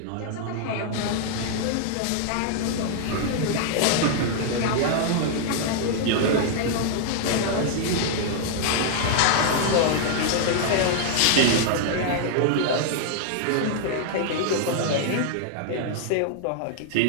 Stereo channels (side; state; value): both; different; correlation 0.00